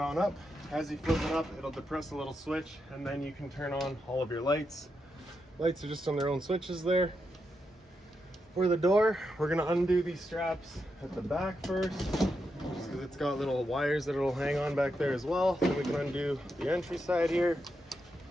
on up. As you flip it up, it'll depress a little switch and then you can turn on all of your lights. Lights are just on their own switches there. For the door, we're gonna undo these straps at the back first, just because it's got little wires that it'll hang on back there as well. Then we can undo the entry side here.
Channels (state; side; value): normal; both; correlation 0.85